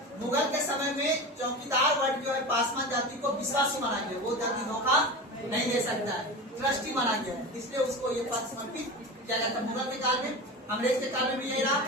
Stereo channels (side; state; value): both; normal; correlation 0.28